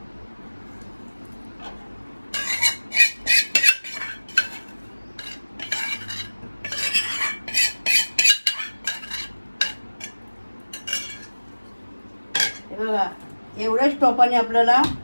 बघा, एवढ्याच टोपाने आपल्याला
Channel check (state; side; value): inverted; both; correlation -1.00